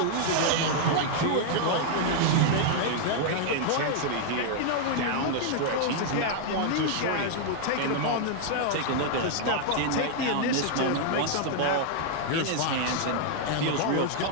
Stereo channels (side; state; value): both; different; correlation 0.00